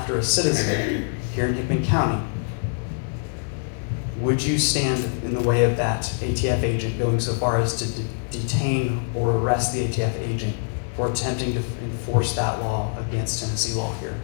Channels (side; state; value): right; silent; 62 dB below the other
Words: a citizen here in Hickman County, would you stand in the way of that ATF agent going so far as to detain or arrest the ATF agent for attempting to enforce that law against Tennessee law here?